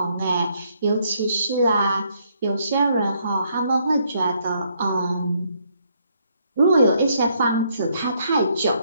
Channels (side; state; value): both; inverted; correlation -0.71